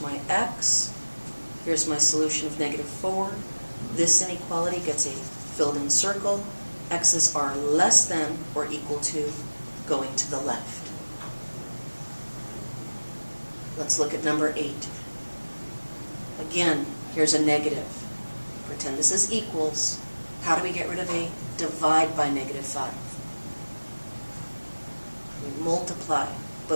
x. Here's my solution of -4. This inequality gets a filled-in circle. X's are less than or equal to going to the left. Let's look at number 8. Again, here's a negative. Pretend this is equals. How do we get rid of a divide by -5? We multiply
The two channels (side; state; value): both; inverted; correlation -1.00